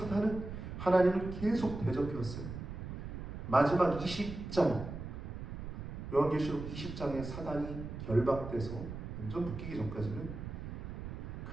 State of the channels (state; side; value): noise; right; rumble, 8 dB below the sound